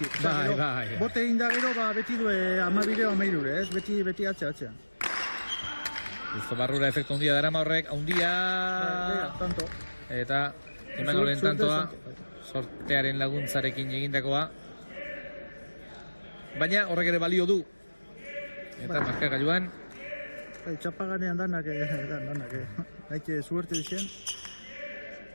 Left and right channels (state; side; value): inverted; both; correlation -1.00